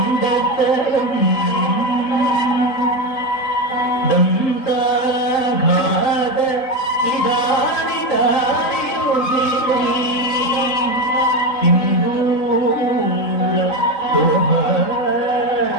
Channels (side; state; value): right; late; 3.9 ms